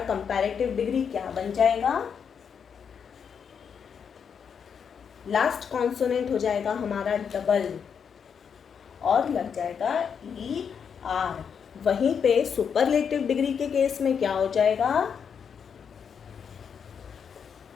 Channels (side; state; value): right; quieter; 7.0 dB